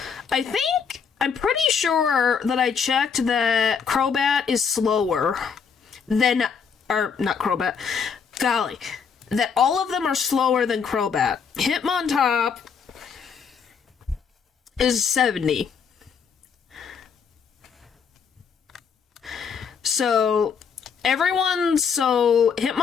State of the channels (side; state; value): right; quieter; 6.4 dB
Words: I'm pretty sure that I checked that Crobat is slower than, or not Crobat, golly, that all of them are slower than Crobat. Hitmontop is 70. So Hitmontop